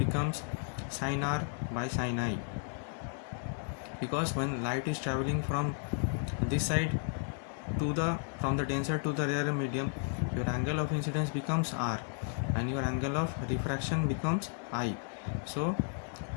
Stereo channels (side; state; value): right; silent; 55 dB below the other